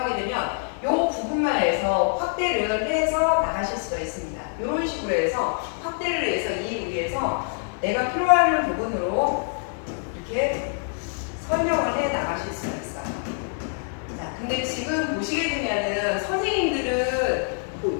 되면 이 부분만 해서 확대를 해서 나가실 수가 있습니다. 이런 식으로 해서 확대를 해서 이 위에서 내가 필요한 부분으로 이렇게 설명을 해 나가실 수가 있어요. 자, 근데 지금 보시게 되면은 선생님들은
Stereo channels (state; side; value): silent; right; 62 dB below the other